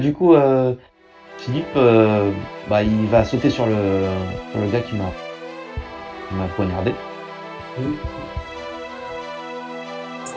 coup, Philippe, bah, il va sauter sur le gars qui m'a poignardé. Ce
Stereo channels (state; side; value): identical; both; correlation 1.00